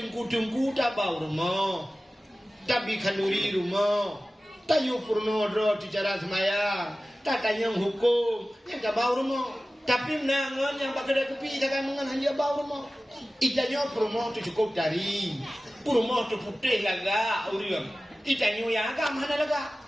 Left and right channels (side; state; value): both; normal; correlation 0.96